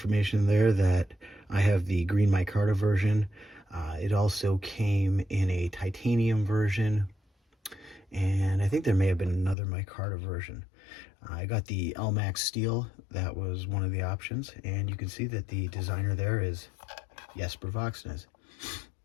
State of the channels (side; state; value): right; drops out; at 9.6 s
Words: there that I have the green micarta version. It also came in a titanium version, and I think there may have been another micarta version. I got the Elmax steel. That was one of the options, and you can see that the designer there is Jesper Voxnes.